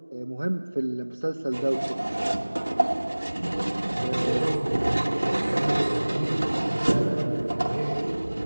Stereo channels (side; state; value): both; inverted; correlation -1.00